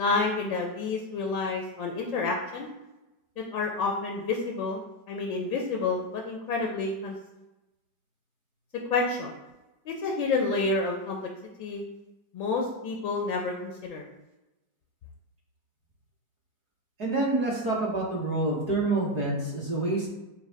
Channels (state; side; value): late; left; 4.7 ms